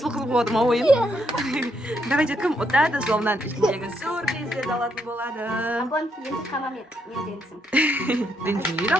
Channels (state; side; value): normal; both; correlation 0.76